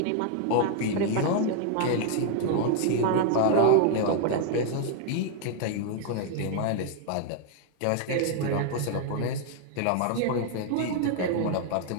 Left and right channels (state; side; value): different; both; correlation 0.00